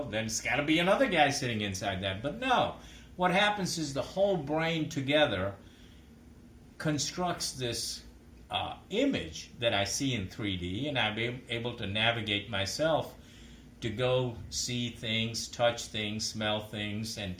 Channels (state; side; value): identical; both; correlation 1.00